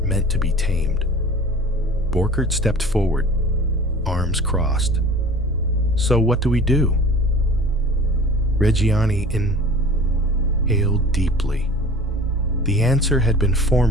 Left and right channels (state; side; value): normal; both; correlation 0.42